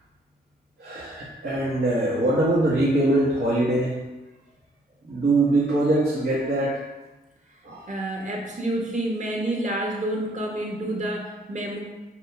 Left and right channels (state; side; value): normal; both; correlation 0.64